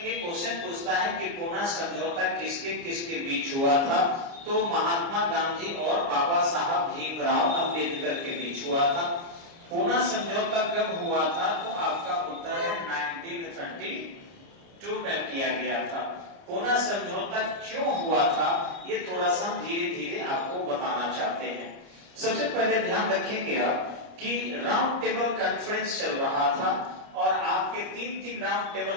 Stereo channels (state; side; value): late; left; 29 ms